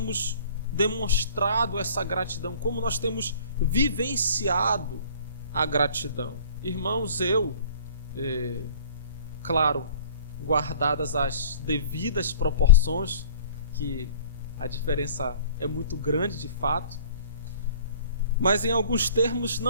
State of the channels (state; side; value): inverted; both; correlation -0.50